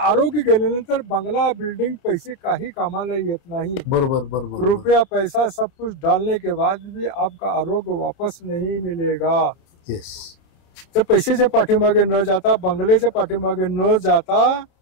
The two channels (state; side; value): late; right; 30 ms